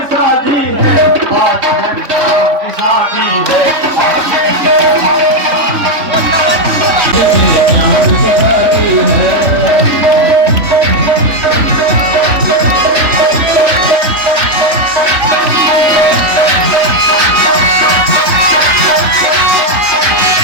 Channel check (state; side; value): late; left; 3.5 ms